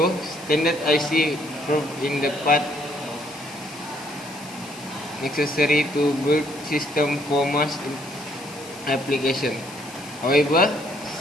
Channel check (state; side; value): noise; left; hiss, 17 dB below the sound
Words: standard IC proved in the part necessary to build system for mass application. However,